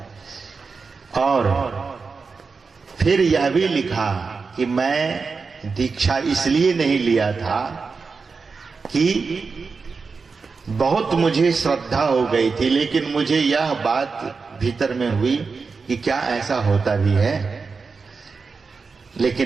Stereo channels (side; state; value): left; quieter; 4.8 dB